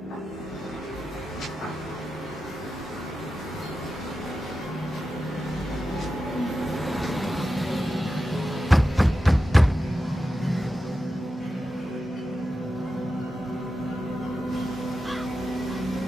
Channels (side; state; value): both; normal; correlation 0.91